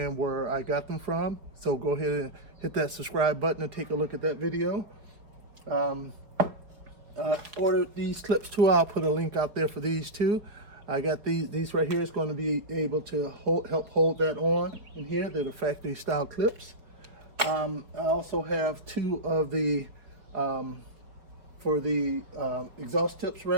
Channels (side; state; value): left; late; 5.0 ms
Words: where I got them from. So go ahead and hit that subscribe button and take a look at that video. Ordered these clips too. I'll put a link out there for these too. I got these right here. It's going to be able to help hold that on in here. They're the factory style clips. I also have two of the for the exhaust tips